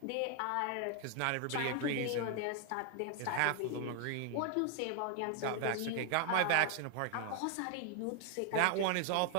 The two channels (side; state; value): both; different; correlation 0.00